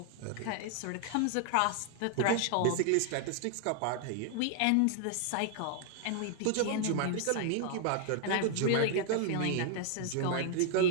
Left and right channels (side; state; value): both; different; correlation 0.00